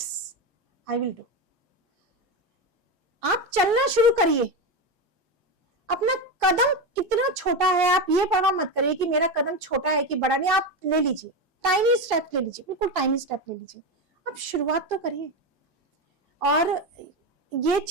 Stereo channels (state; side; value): normal; both; correlation 0.15